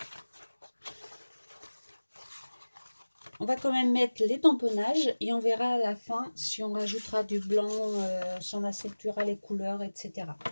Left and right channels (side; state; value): both; inverted; correlation -1.00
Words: on va quand même mettre les tamponnages et on verra à la fin si on rajoutera du blanc, si on accentuera les couleurs, etc.